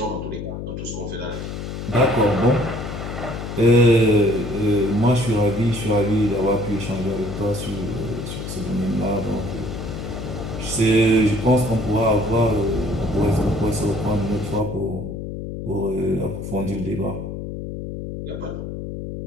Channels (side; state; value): left; noise; hum, 7 dB below the sound